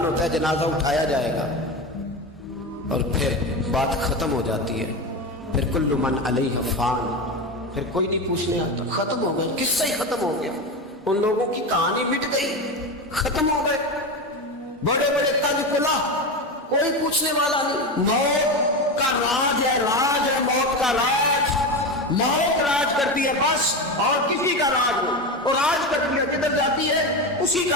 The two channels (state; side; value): normal; both; correlation 0.19